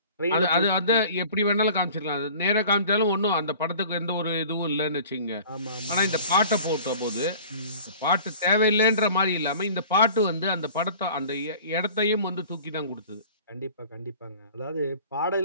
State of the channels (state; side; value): inverted; both; correlation -0.45